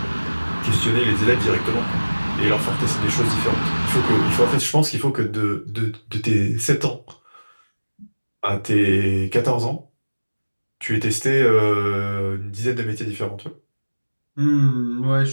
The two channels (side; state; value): both; inverted; correlation -1.00